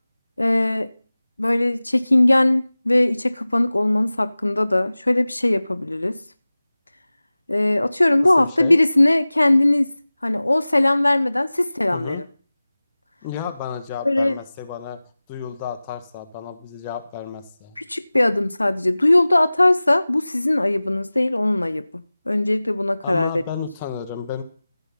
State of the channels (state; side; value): inverted; both; correlation -0.98